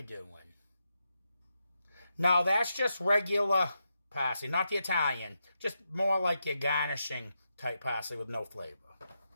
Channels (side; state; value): both; inverted; correlation -0.86